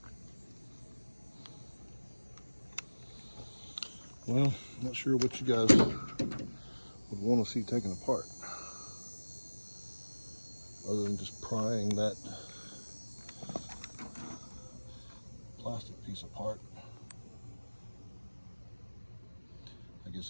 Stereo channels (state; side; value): inverted; both; correlation -1.00